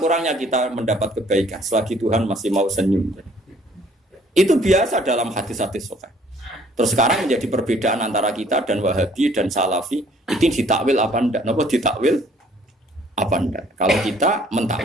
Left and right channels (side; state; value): both; normal; correlation 0.59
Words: kita mendapat kebaikan selagi Tuhan masih mau senyum. Itu biasa dalam hadis-hadis sahih. Terus sekarang menjadi perbedaan antara kita dan Wahabi dan Salafi itu ditakwil apa ndak? Napa ditakwil apa ndak? Kalau kita